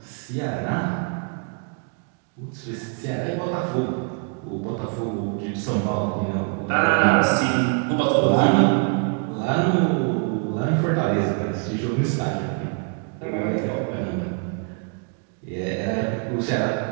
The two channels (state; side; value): quieter; left; 39.7 dB